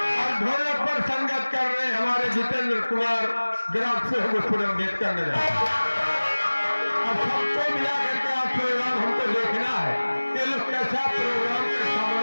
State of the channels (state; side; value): inverted; both; correlation -1.00